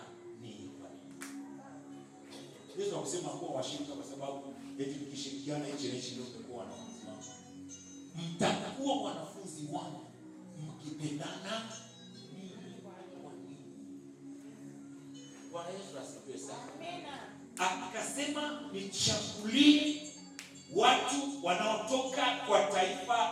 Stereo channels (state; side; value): identical; both; correlation 1.00